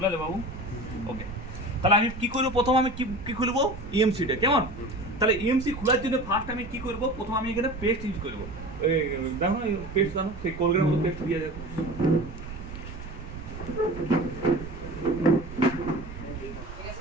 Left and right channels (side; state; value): right; noise; rumble, 12 dB below the sound